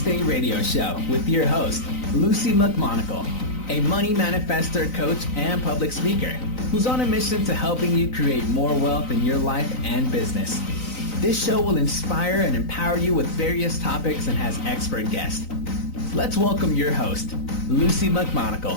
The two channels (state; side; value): late; right; 3.9 ms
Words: radio show with your host, Lucy McMonagle, a money manifestor, coach, and public speaker who's on a mission to helping you create more wealth in your life and business. This show will inspire and empower you with various topics and has expert guests. Let's welcome your host, Lucy